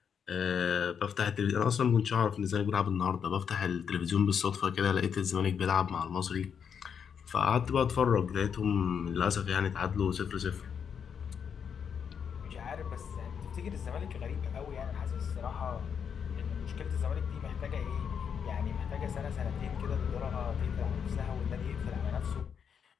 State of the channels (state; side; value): quieter; right; 7.3 dB